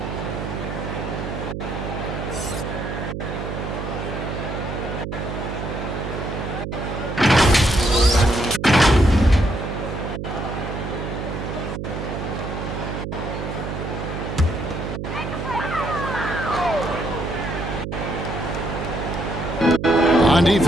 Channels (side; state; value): right; noise; hum, 5 dB below the sound